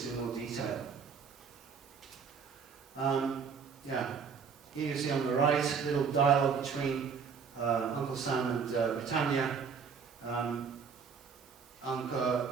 in more detail. Here you see on the right, a little dialogue between Uncle Sam and Britannia.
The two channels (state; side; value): quieter; left; 6.1 dB